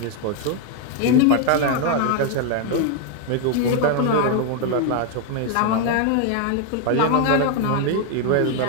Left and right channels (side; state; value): both; different; correlation 0.01